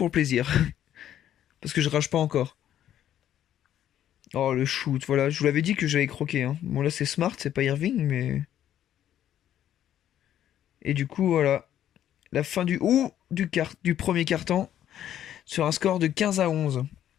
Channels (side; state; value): right; quieter; 11.1 dB